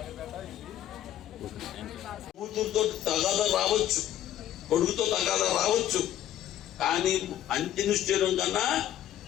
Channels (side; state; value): right; quieter; 11.9 dB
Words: కూతురుతో తగాదా రావచ్చు, కొడుకుతో తగాదా రావచ్చు, కానీ అంత్య నిష్ఠూరం కన్నా